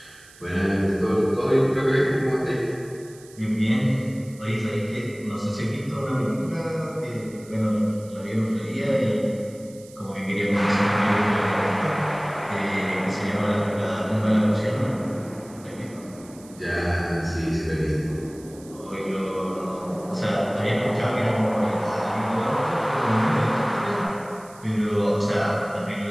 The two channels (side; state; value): right; noise; hiss, 23 dB below the sound